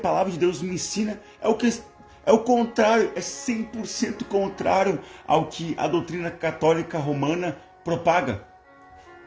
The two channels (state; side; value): identical; both; correlation 1.00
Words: de Deus me ensina é o contrário, é 100% contrário ao que a doutrina católica romana propaga.